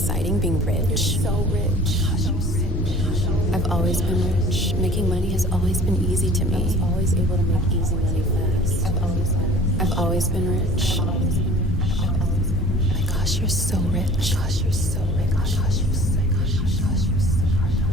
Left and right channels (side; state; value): both; normal; correlation 0.47